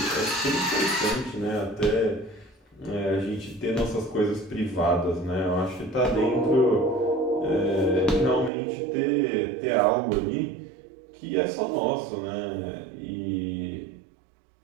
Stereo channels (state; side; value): drops out; left; at 8.5 s